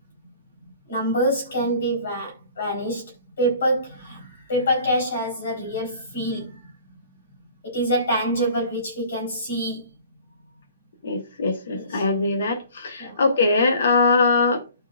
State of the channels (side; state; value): both; inverted; correlation -0.49